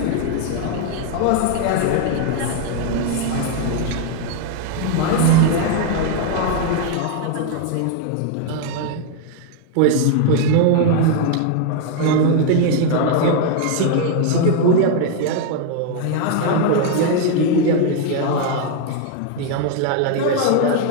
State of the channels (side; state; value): both; different; correlation 0.00